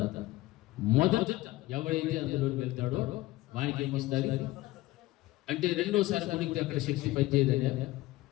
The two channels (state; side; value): quieter; right; 18.1 dB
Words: మొదట ఎవరైతే అందులోకి వెళ్తాడో వానికి ఏమొస్తుంది అంటే, రెండోసారి మునిగితే అక్కడ శక్తి పనిచేయదనే,